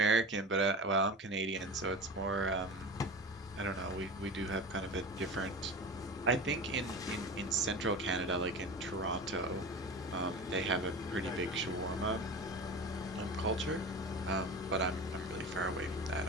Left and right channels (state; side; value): normal; both; correlation 0.31